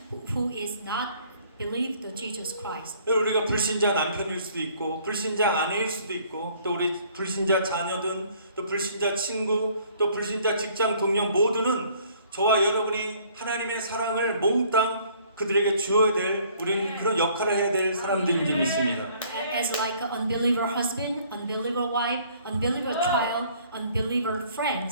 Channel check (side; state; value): both; inverted; correlation -0.59